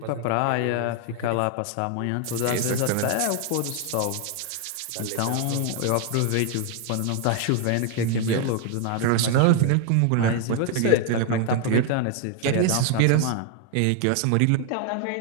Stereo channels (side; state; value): both; different; correlation 0.00